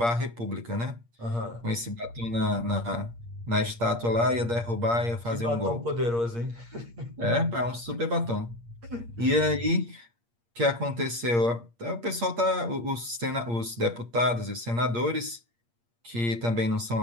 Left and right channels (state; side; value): late; left; 8.6 ms